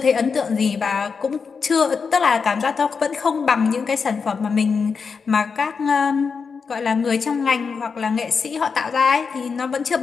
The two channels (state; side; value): quieter; right; 5.5 dB